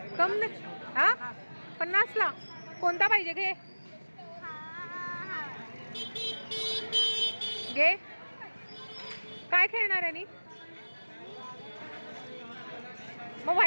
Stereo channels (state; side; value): inverted; both; correlation -1.00